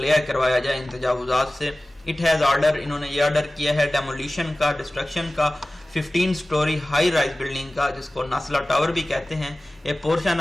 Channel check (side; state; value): both; normal; correlation 0.97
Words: کروایا جائے ان تجاوزات سے. It has order, انہوں نے یہ آرڈر کیا ہے ڈیمولیشن کا, ڈسٹرکشن کا, 15 story high rise building کا, جس کو ناسلا ٹاور بھی کہتے ہیں. A portion